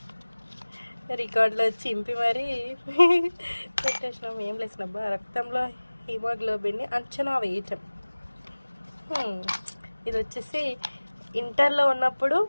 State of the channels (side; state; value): both; inverted; correlation -1.00